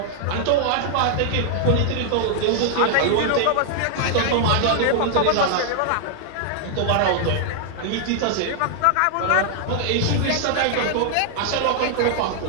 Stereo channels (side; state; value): both; different; correlation -0.01